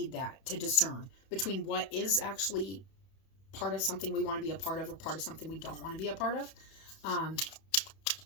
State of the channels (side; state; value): right; late; 31 ms